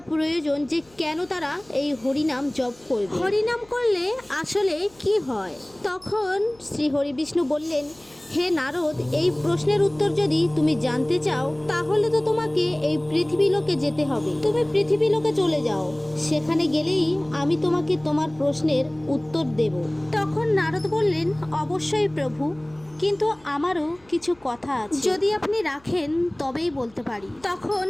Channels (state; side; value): noise; left; hum, 30 dB below the sound